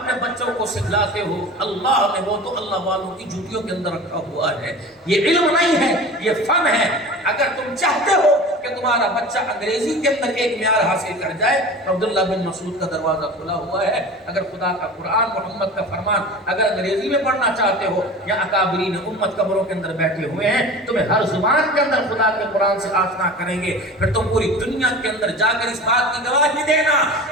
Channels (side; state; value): both; normal; correlation 0.36